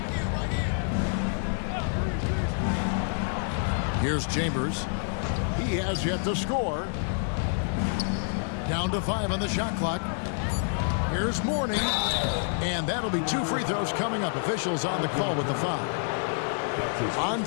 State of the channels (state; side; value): silent; right; digital silence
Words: Here's Chambers. He has yet to score. Down to 5 on the shot clock. Here's Mourning. And that'll be 2 free throws coming up. Officials on the call with the foul.